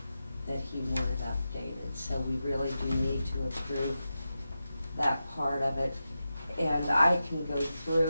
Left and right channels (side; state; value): both; inverted; correlation -0.91